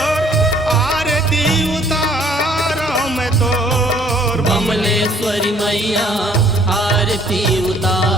आरती उतारो मैं तो। बमलेश्वरी मैया आरती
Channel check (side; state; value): both; normal; correlation 0.59